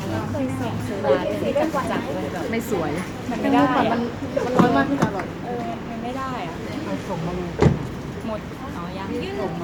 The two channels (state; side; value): identical; both; correlation 1.00